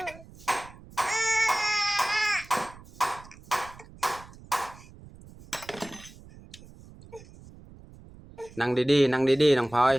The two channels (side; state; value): right; noise; rumble, 20 dB below the sound